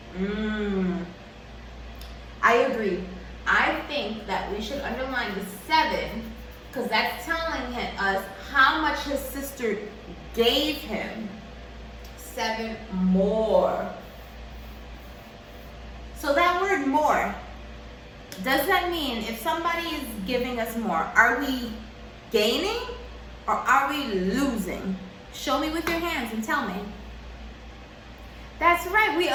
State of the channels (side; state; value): both; identical; correlation 1.00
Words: I agree. I think that we should underline the 7 because that's telling us how much his sister gave him. 7 more. So that word more, does that mean if somebody is giving us more, are we gaining or are we losing? Show me with your hands and tell me. That's right, we